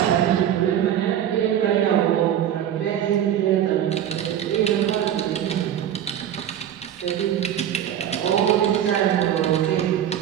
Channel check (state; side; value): quieter; left; 10.4 dB